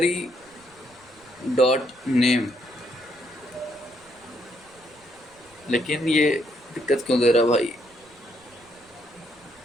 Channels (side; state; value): right; noise; rumble, 29 dB below the sound